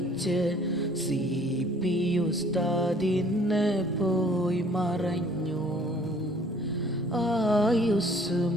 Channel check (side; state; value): both; normal; correlation 0.56